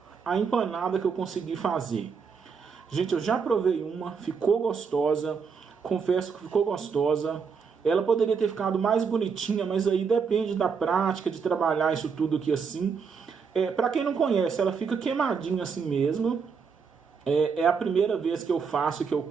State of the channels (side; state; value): left; quieter; 5.9 dB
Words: a empanada que eu consegui fazer. Gente, eu já provei uma, ficou gostosa. Confesso que ficou gostosa. Ela poderia ter ficado mais bonitinha, mas aí depende da prática, de trabalhar isso tudo aqui assim. Para quem não conhece, ela fica queimadinha assim mesmo. É a primeira vez que eu faço, que eu